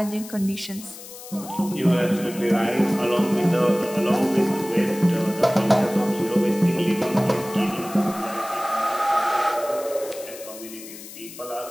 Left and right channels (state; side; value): noise; left; hiss, 15 dB below the sound